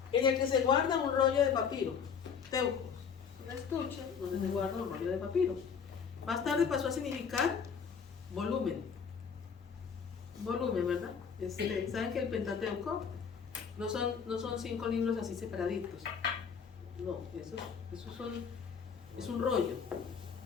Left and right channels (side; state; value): right; quieter; 6.6 dB